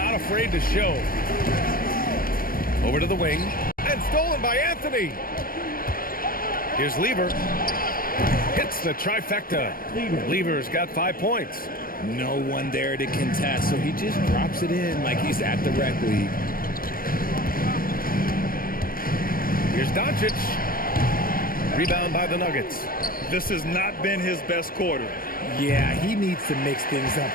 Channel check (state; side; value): late; right; 0.42 ms